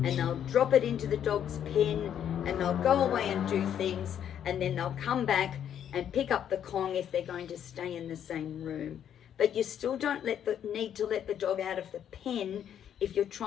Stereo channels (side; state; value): right; quieter; 9.5 dB